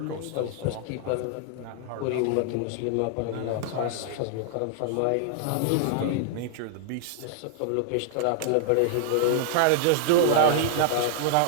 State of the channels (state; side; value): different; both; correlation -0.01